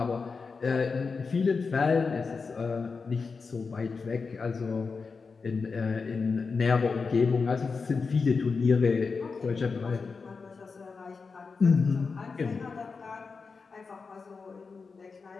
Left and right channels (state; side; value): quieter; right; 4.8 dB